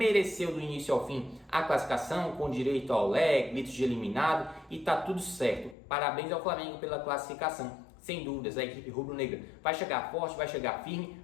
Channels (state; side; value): drops out; right; at 5.8 s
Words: do início ao fim a classificação, com direito ao leg, gritos de eliminado, e tá tudo certo. Parabéns ao Flamengo pela classificação. Sem dúvidas, a equipe rubro-negra vai chegar forte, vai chegar firme